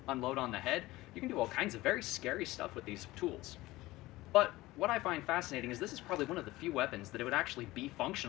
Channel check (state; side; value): quieter; right; 18.6 dB